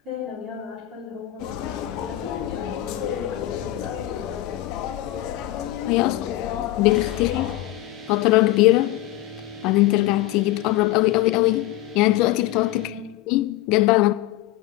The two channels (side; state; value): right; quieter; 15.3 dB